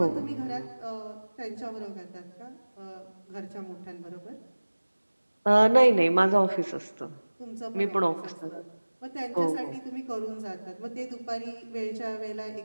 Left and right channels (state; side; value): inverted; both; correlation -1.00